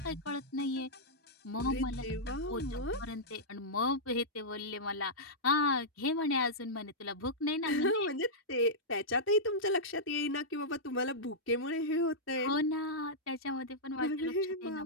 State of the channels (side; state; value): both; normal; correlation -0.10